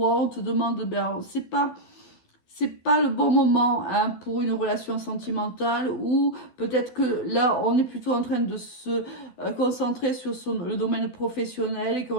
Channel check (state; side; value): late; right; 12 ms